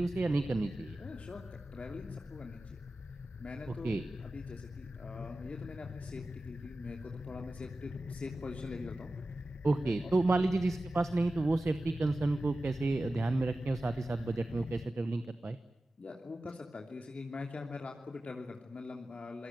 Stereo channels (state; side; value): normal; both; correlation 0.94